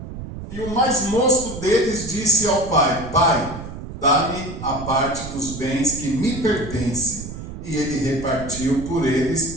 e o mais moço deles disse ao pai: Pai, dá-me a parte dos bens que me pertence. E ele repartiu por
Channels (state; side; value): noise; right; rumble, 10 dB below the sound